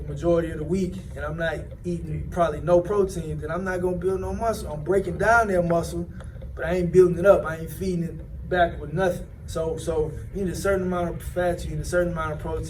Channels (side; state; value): both; identical; correlation 1.00